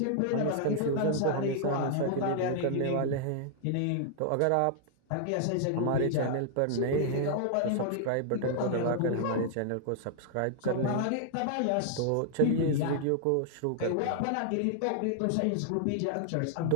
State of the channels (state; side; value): different; both; correlation -0.01